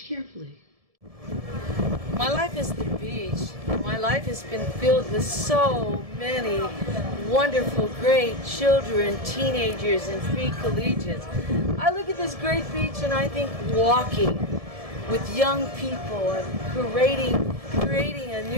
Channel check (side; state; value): left; late; 1.7 ms